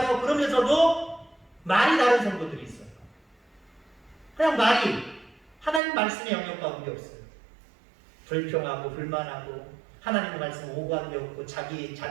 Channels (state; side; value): drops out; left; at 5.8 s